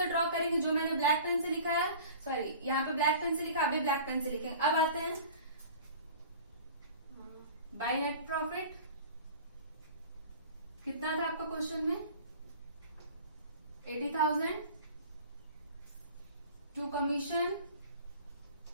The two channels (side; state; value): both; inverted; correlation -0.42